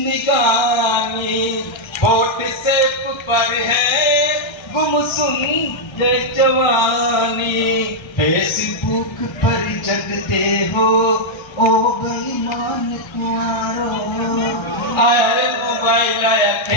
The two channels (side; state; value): right; late; 1.3 ms